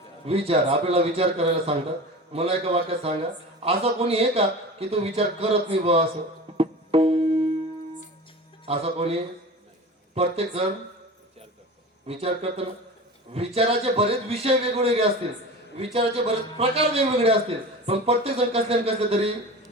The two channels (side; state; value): both; normal; correlation 0.33